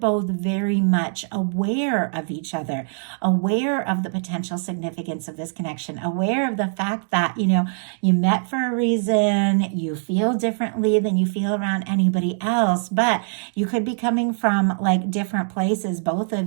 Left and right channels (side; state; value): left; silent; digital silence